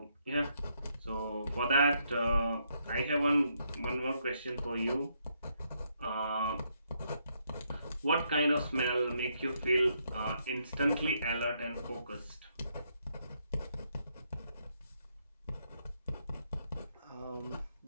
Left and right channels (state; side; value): inverted; both; correlation -0.75